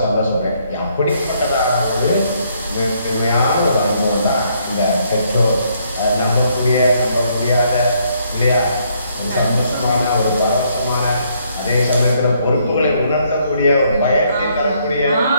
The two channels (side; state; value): both; inverted; correlation -0.70